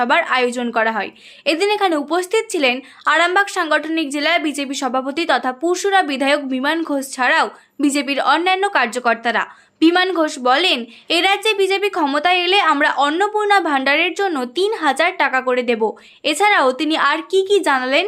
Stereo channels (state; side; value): identical; both; correlation 1.00